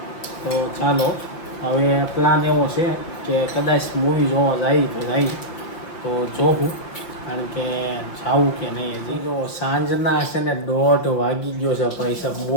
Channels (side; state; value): right; late; 5.8 ms